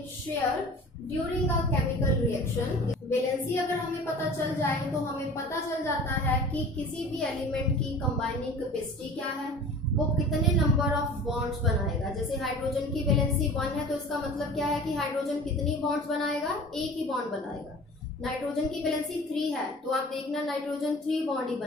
share during a chemical reaction। Valency अगर हमें पता चल जाए तो हमें पता चल जाता है कि किसी भी एलिमेंट की कंबाइनिंग कैपेसिटी क्या है, वो कितने नंबर ऑफ बॉन्ड्स बनाएगा। जैसे हाइड्रोजन की वैलेंसी 1 है तो इसका मतलब क्या है कि हाइड्रोजन कितनी बॉन्ड्स बनाएगा, एक ही बॉन्ड बनाएगा। नाइट्रोजन की वैलेंसी 3 है तो आप देखना नाइट्रोजन 3 बॉन्ड ही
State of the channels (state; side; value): normal; both; correlation 0.42